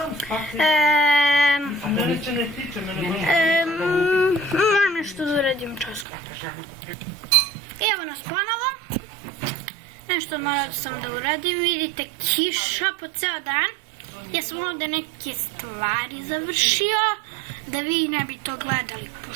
Moram nešto da uradim časko. Evo nas ponovo. Nešto morao sam da uradim. Vidite, kiša po ceo dan. Ja sam ovdje neke stvari završio, da vi ne bi to gledali,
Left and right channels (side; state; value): left; drops out; at 6.1 s